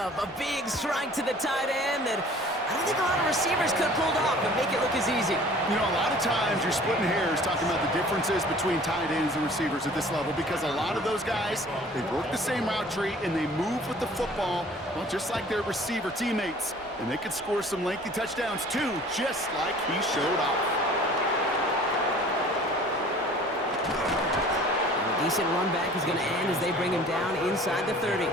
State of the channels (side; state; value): both; normal; correlation 0.49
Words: A big strike to the tight end that I don't think a lot of receivers could have pulled off and make it look as easy. You know, a lot of times you're splitting hairs talking about the differences between tight ends and receivers at this level because a lot of those guys, they work the same route tree and they move with the football, well, just like their receiver teammates. And they could score some lengthy touchdowns too, just like he showed off. A decent run back is going to end as they bring him down inside the 30.